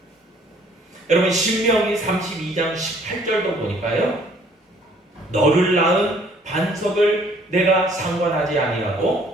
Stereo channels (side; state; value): both; normal; correlation 0.59